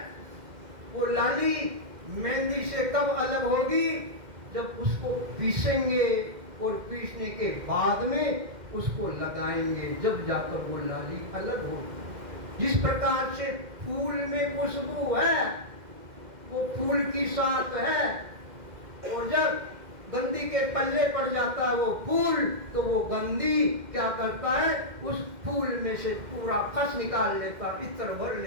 वो लाली मेहंदी से कब अलग होगी जब उसको पीसेंगे और पीसने के बाद में उसको लगाएंगे, जब जाकर वो लाली अलग होगी। जिस प्रकार से फूल में खुशबू है वो फूल की साथ है, और जब गंदी के पल्ले पड़ जाता है वो फूल तो वो गंदी क्या करता है, उस फूल में से पूरा खस निकाल लेता, इत्र भर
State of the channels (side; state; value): left; late; 2.1 ms